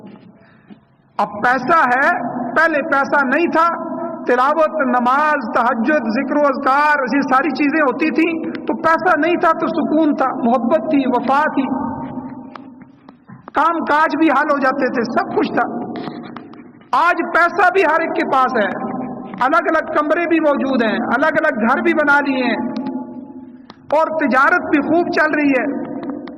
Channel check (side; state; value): both; identical; correlation 1.00